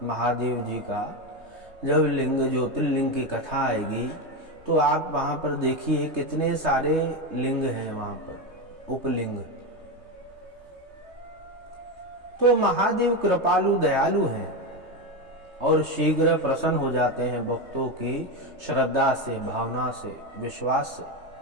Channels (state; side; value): late; left; 3.3 ms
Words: महादेव जी का जब लिंग ज्योतिर्लिंग की कथा आएगी तो आप वहां पर देखिए कितने सारे लिंग हैं वहां पर, उपलिंग। तो महादेव कृपालु दयालु हैं और शीघ्र प्रसन्न हो जाते हैं भक्तों की श्रद्धा से, भावना से, विश्वास से।